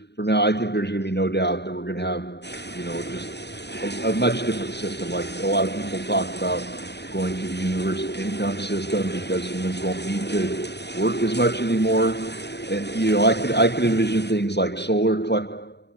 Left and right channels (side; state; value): right; late; 0.49 ms